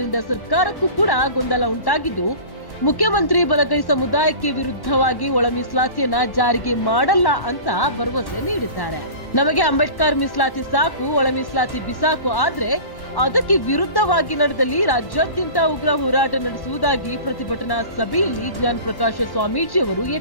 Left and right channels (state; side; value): late; right; 1.1 ms